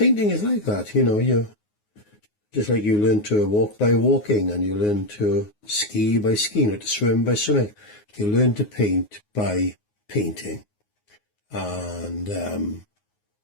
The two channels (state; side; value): late; right; 9.5 ms